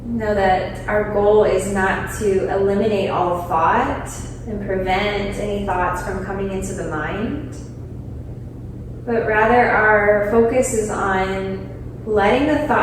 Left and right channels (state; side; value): identical; both; correlation 1.00